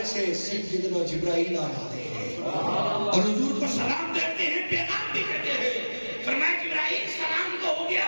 سے سیدنا جبرائیل آ جاتے ہیں اور حضور کو سلام دیتے ہیں، پیغام بھی دیتے ہیں. فرمایا جبرائیل سلام تو ہو گیا،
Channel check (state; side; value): inverted; both; correlation -1.00